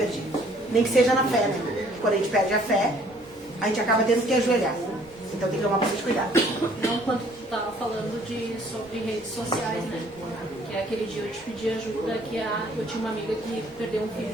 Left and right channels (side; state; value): both; normal; correlation 0.59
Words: Nem que seja na fé, né? Quando a gente perde a fé, a gente acaba tendo que ajoelhar. Então tem que tomar bastante cuidado. Não, quando tu estava falando sobre redes sociais, né? Que aquele dia eu te pedi ajuda, eu tinha uma amiga que perdeu um filho